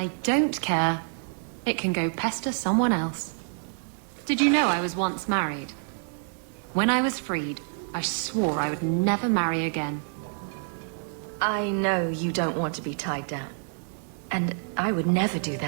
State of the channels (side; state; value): left; silent; 60 dB below the other